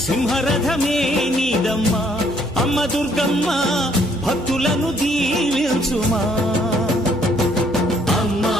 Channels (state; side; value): noise; right; hum, 19 dB below the sound